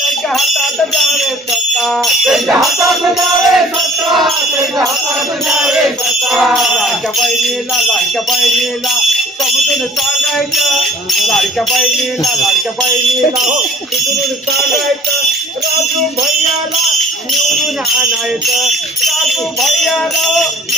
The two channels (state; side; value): normal; both; correlation 0.51